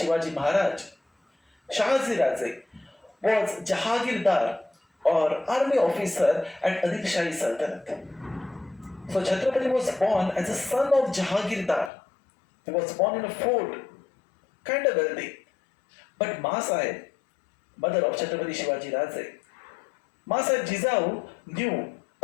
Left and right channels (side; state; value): right; drops out; at 11.9 s